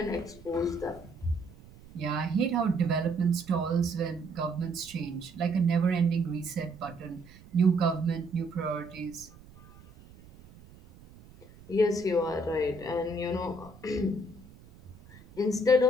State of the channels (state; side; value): noise; right; rumble, 22 dB below the sound